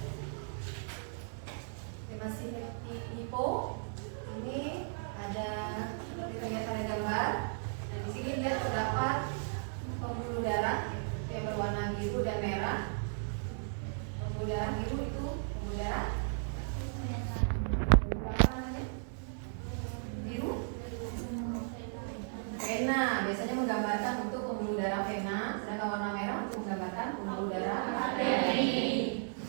Masih hipo, ini ada seperti terlihat pada gambar. Dan di sini dia terdapat pembuluh darah yang berwarna biru dan merah. Pembuluh darah biru itu pembuluh darah berapa namanya? Biru. Vena biasanya menggambarkan untuk pembuluh darah vena, sedangkan warna merah untuk menggambarkan pembuluh darah arteri.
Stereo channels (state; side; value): silent; left; 54 dB below the other